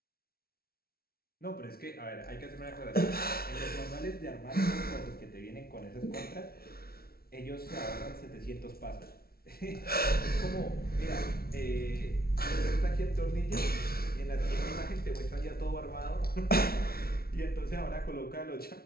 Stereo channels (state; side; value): late; right; 0.44 ms